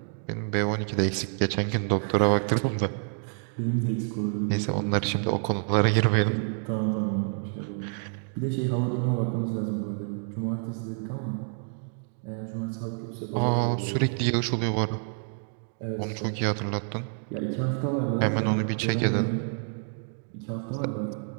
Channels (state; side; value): silent; left; 59 dB below the other